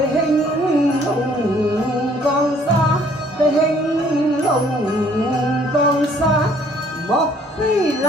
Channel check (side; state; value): both; normal; correlation 0.61